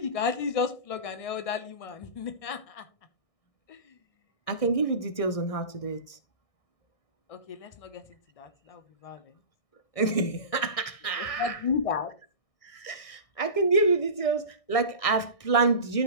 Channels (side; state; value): right; late; 1.6 ms